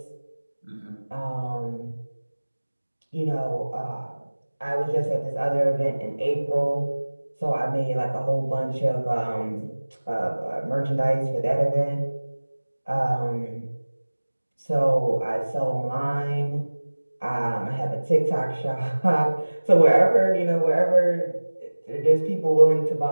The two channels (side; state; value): both; inverted; correlation -1.00